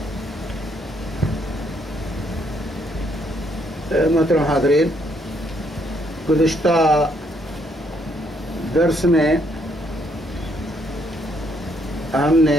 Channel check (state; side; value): normal; both; correlation 0.71